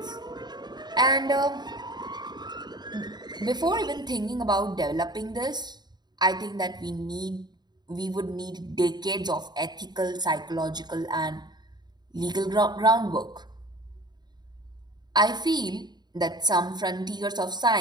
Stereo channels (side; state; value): left; late; 0.20 ms